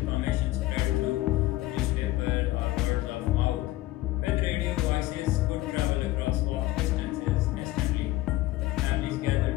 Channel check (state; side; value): quieter; right; 16.9 dB